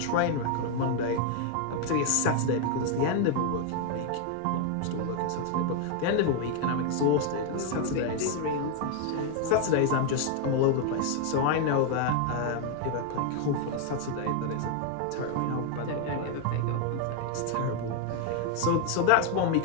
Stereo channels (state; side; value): different; both; correlation 0.01